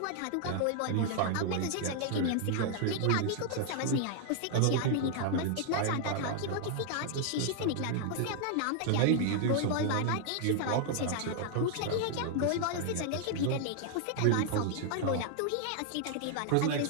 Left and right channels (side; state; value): both; different; correlation 0.00